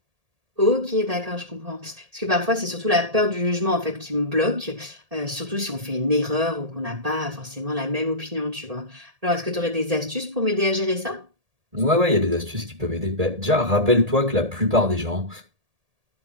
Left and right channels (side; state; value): left; late; 1.8 ms